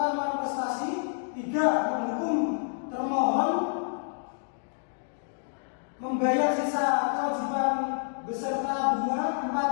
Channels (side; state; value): right; silent; digital silence